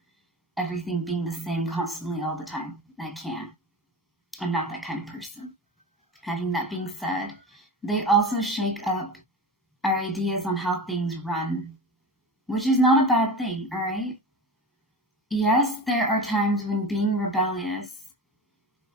Everything being the same constantly all the time. I can't. I'm not that kind of person. Having that being said, they also shake up our ideas on how things run, which is not a bad thing, all right? Yes, there are times when being rebellious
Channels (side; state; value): both; normal; correlation 0.29